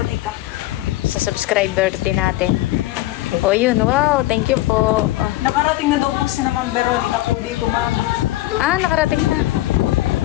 Sa subscriber din natin. O yun, wow, thank you po. Nakarating na daw po si naman Veronica po dito, ma'am. Nakarating na.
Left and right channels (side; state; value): right; quieter; 17.1 dB